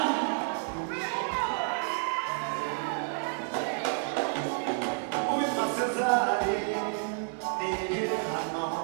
uwitwa Sezari niyigire hano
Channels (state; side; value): silent; left; 58 dB below the other